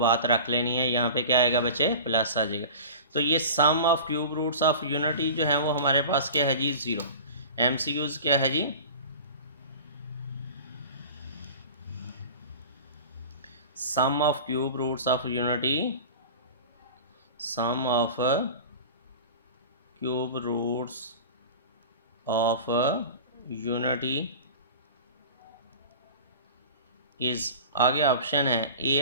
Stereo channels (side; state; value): both; inverted; correlation -0.36